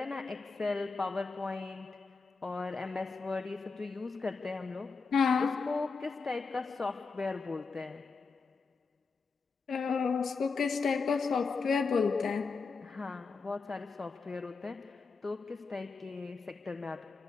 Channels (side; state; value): right; quieter; 4.6 dB